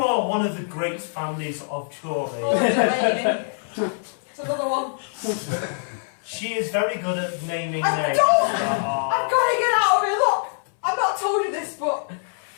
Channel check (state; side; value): silent; right; 61 dB below the other